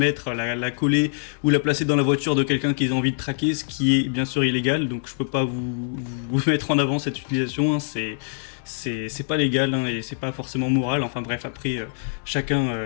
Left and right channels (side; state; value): right; silent; digital silence